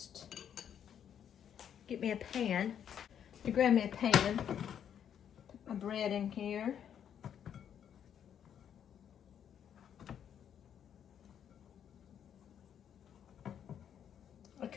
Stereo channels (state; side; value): quieter; right; 9.0 dB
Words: get me a pan. You grab me a pan, put my bread in here. I